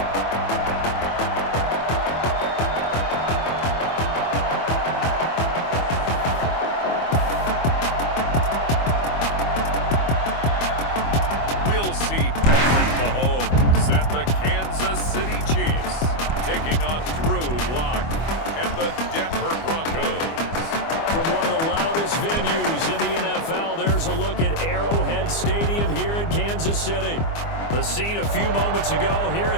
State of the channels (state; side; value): late; right; 24 ms